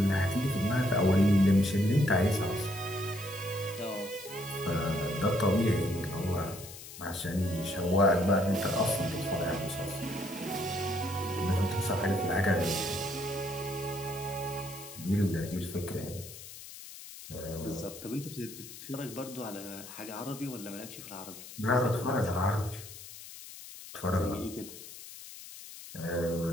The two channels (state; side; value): noise; left; hiss, 14 dB below the sound